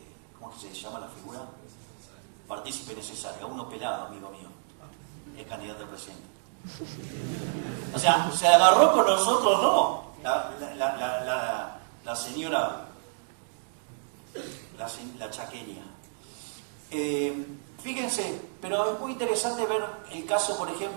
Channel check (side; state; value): left; silent; digital silence